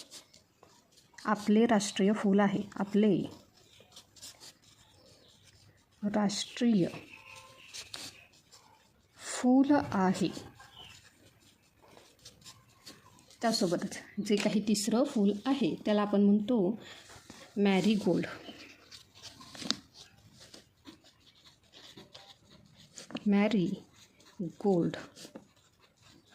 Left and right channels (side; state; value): both; identical; correlation 1.00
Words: आपले राष्ट्रीय फूल आहे. आपले राष्ट्रीय फूल आहे. त्यासोबतच जे काही तिसरं फूल आहे त्याला आपण म्हणतो मॅरीगोल्ड. मॅरीगोल्ड